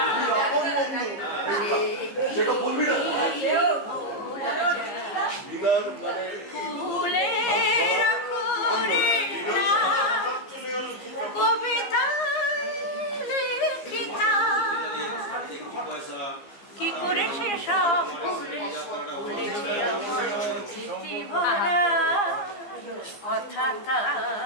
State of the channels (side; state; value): right; late; 15 ms